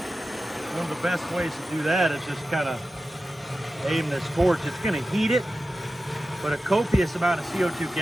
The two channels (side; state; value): both; normal; correlation 0.93